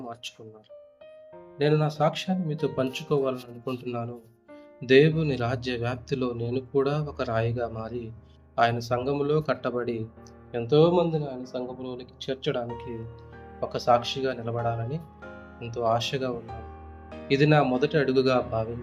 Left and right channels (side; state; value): both; identical; correlation 1.00